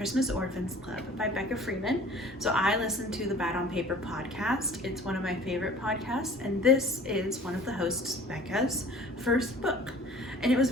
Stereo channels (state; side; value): normal; both; correlation 0.48